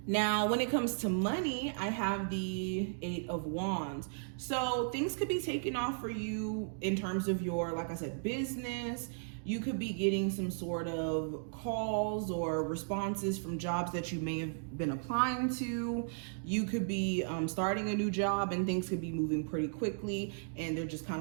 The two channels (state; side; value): silent; left; digital silence